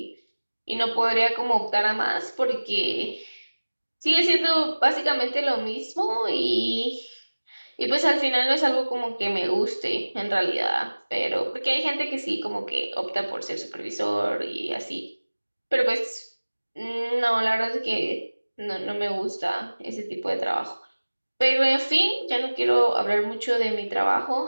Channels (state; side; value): inverted; both; correlation -1.00